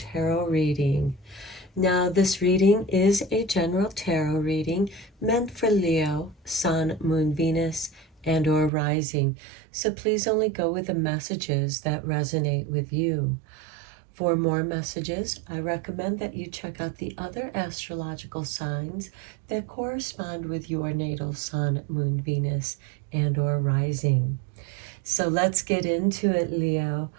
reading. Now, this reading is a general tarot reading meant for Leo, Sun, Moon, Venus, and/or rising. So please only go with the messages that resonate with you. For more messages, I recommend that you check out the other astrological signs that correspond with your natal Sun, Moon, Venus, and/or rising. So let's get into it, Leo.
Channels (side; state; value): left; drops out; at 8.7 s